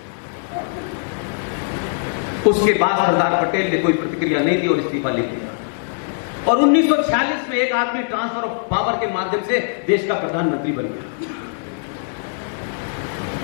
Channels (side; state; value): right; silent; 60 dB below the other